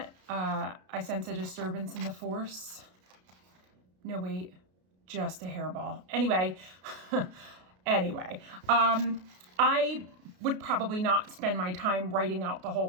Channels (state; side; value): late; left; 33 ms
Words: I sense a disturbance in the force. No, wait, just a hairball. Anyway, I would probably not spend my time writing out the